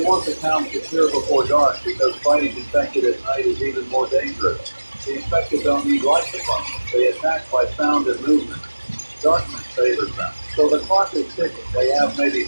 want the town secure before dark because fighting infected at night is even more dangerous. The infected don't need light to function. They attack by sound and movement. Darkness favors them. So the clock is ticking. They have maybe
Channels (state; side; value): inverted; both; correlation -1.00